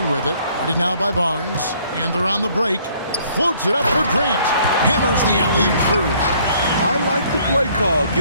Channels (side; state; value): both; inverted; correlation -0.61